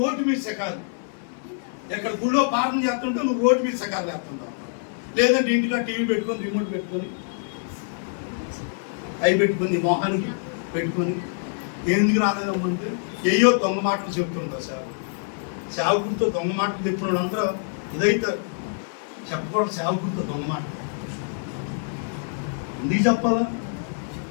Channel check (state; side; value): silent; right; digital silence